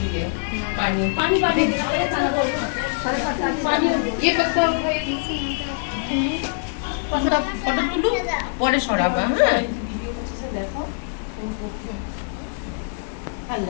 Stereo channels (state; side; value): silent; right; digital silence